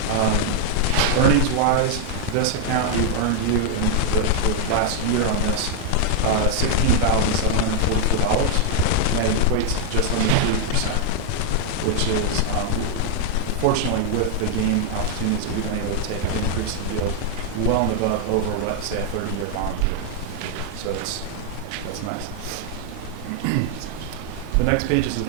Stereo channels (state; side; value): different; both; correlation 0.00